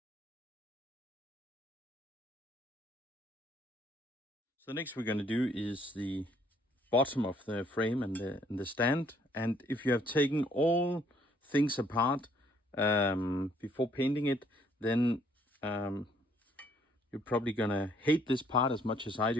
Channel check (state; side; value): normal; both; correlation 0.65